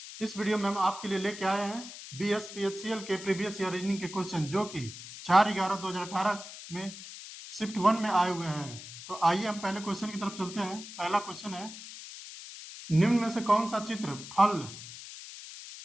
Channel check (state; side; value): noise; left; hiss, 13 dB below the sound